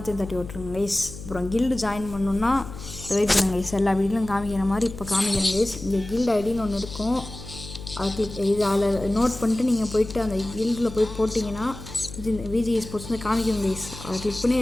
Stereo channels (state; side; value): noise; left; hum, 12 dB below the sound